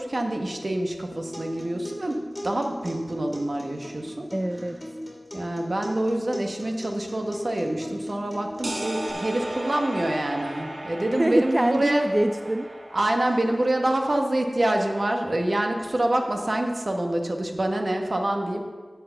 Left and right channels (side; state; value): both; normal; correlation 0.98